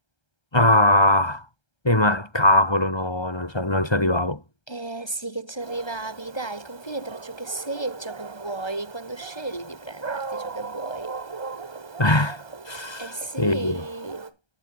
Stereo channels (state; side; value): late; right; 1.3 ms